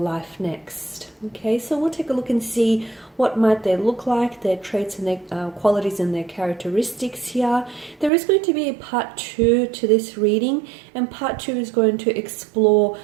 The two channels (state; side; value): drops out; left; at 8.1 s